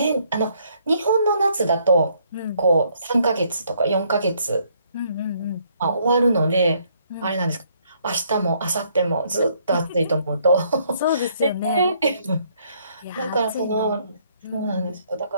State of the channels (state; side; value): inverted; both; correlation -0.68